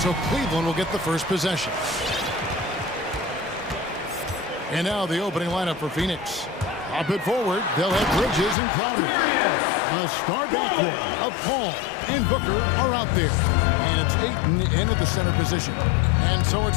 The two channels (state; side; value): drops out; right; at 8.6 s